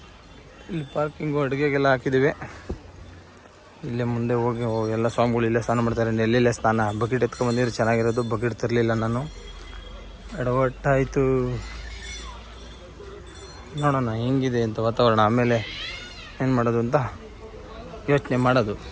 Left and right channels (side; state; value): both; identical; correlation 1.00